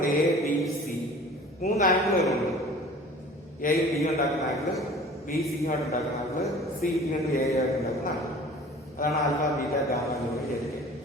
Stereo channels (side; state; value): both; normal; correlation 0.45